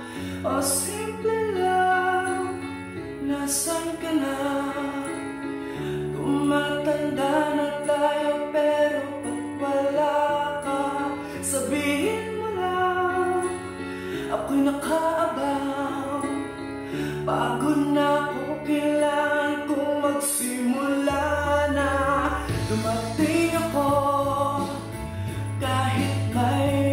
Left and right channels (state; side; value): identical; both; correlation 1.00